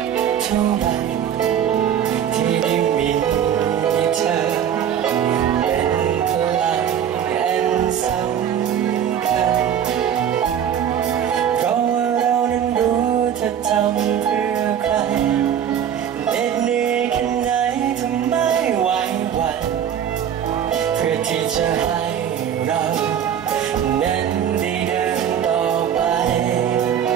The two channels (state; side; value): quieter; left; 9.1 dB